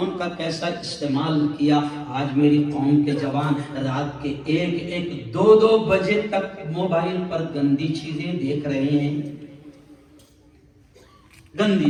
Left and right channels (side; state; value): both; identical; correlation 1.00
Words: کا کیسا استعمال کیا. آج میری قوم کے جوان رات کے 1-2 بجے تک موبائل پر گندی چیزیں دیکھ رہے ہیں.